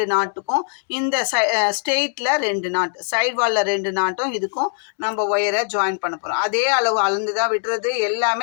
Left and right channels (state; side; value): silent; right; digital silence